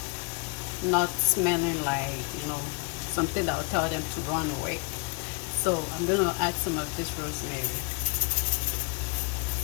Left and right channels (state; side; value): quieter; right; 32.5 dB